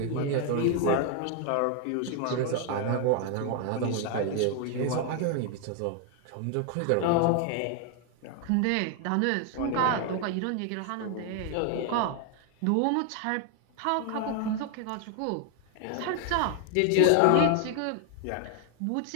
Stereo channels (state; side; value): different; both; correlation 0.00